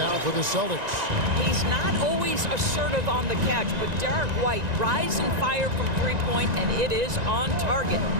for the Celtics. He's not always assertive on the catch, but Derek White rise and fire from three-point, and it is on target.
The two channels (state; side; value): late; left; 1.9 ms